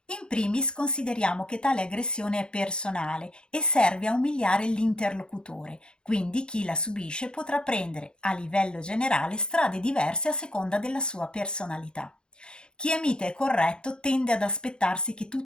In primis consideriamo che tale aggressione è personale e serve a umiliare l'interlocutore, quindi chi la subisce potrà prendere, a livello generale, strade diverse a seconda della sua personalità. Chi è mite e corretto tende ad aspettarsi che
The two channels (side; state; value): right; late; 0.049 ms